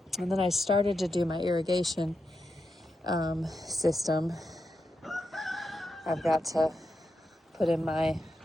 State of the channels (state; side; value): normal; both; correlation 0.86